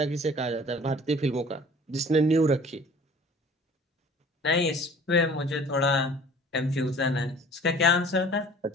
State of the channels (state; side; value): normal; both; correlation 0.48